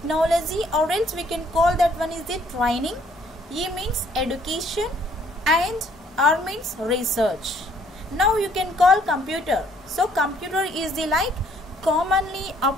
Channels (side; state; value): both; normal; correlation 0.63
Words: or else we can call that one is the training, E means education, and R means research. Now you can call computer. So computer is the like commonly